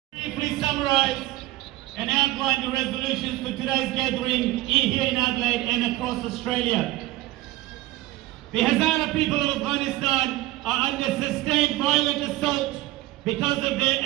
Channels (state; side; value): quieter; left; 17.5 dB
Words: Briefly summarize and outline the resolutions for today's gathering here in Adelaide and across Australia. The Hazara people of Afghanistan are under sustained violent assault because of their